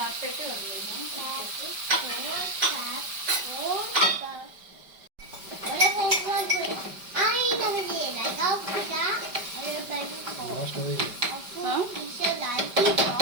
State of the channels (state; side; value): late; left; 5.1 ms